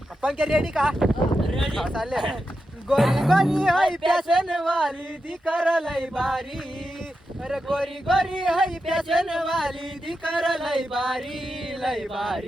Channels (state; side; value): normal; both; correlation 0.88